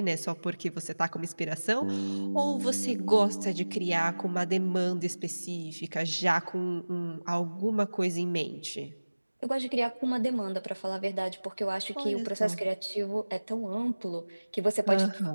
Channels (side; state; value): both; inverted; correlation -1.00